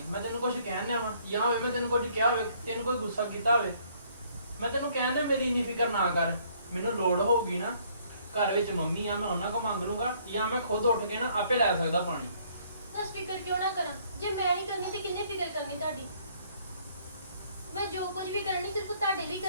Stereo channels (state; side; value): inverted; both; correlation -0.63